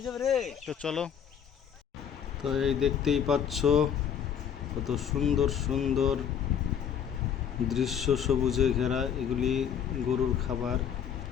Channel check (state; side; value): quieter; right; 8.3 dB